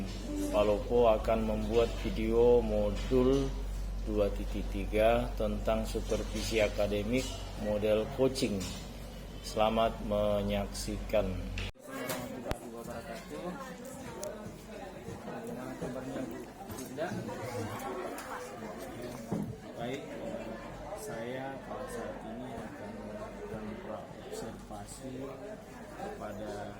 Palopo, akan membuat video modul 2.3 tentang supervisi akademik model coaching. Selamat menyaksikan. Warahmatullahi wabarakatuh. Bagaimana kabarnya Bu Linda? Baik, saya pada saat ini akan melakukan observasi kepada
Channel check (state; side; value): identical; both; correlation 1.00